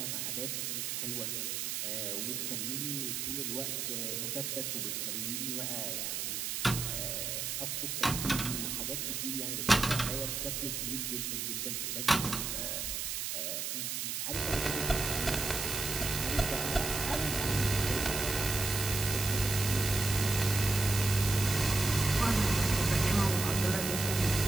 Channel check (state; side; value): noise; right; hiss, 2 dB below the sound